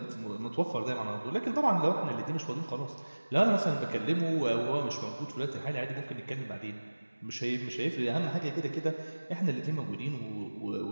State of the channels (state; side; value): inverted; both; correlation -1.00